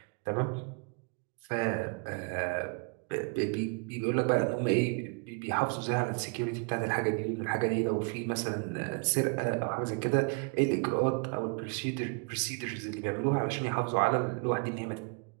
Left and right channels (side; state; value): left; quieter; 36.3 dB